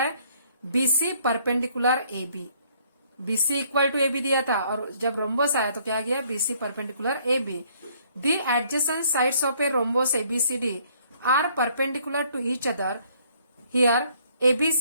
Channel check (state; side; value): inverted; both; correlation -0.64